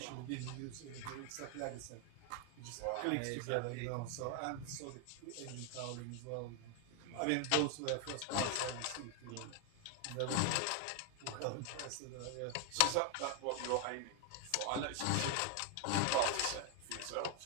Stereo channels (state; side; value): different; both; correlation 0.01